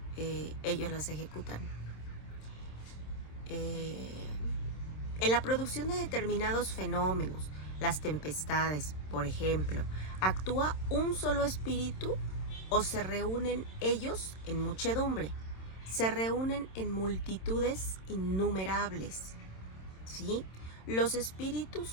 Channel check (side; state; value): right; late; 27 ms